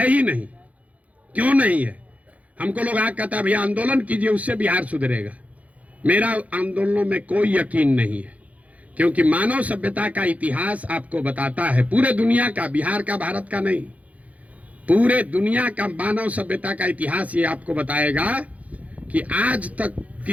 ही नहीं। क्यों नहीं है? हमको लोग आगे कहता है भैया आंदोलन कीजिए उससे बिहार सुधरेगा। मेरा आंदोलनों में कोई यकीन नहीं है, क्योंकि मानव सभ्यता का इतिहास आपको बताता है, पूरे दुनिया का, बिहार का, भारत का नहीं, पूरे दुनिया का मानव सभ्यता का इतिहास ये आपको बताएगा कि आज तक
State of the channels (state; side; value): late; left; 0.069 ms